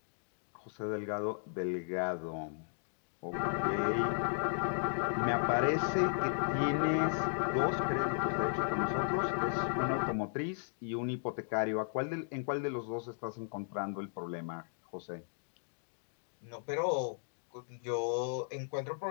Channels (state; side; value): silent; right; digital silence